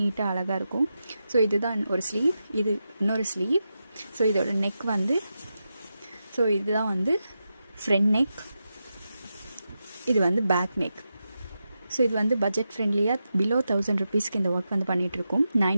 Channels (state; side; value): inverted; both; correlation -0.89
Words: நீட்டாக அழகாக இருக்கும். ஸோ இதுதான் ஒரு ஸ்லீவ், இது இன்னொரு ஸ்லீவ். ஸோ இதோட நெக் வந்து, ஸோ இதுதான் வந்து ஃப்ரண்ட் நெக், இது வந்து பேக் நெக். ஸோ இது வந்து பட்ஜெட் ஃப்ரெண்ட்லியாக பிலோ 1000 ருபீஸ்க்கு இந்த ஒர்க் வந்து பண்ணிகிட்ருக்கோம்.